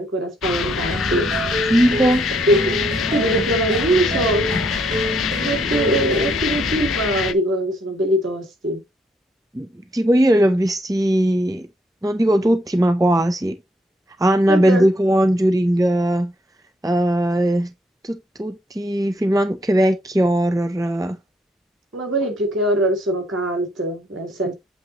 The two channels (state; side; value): normal; both; correlation 0.72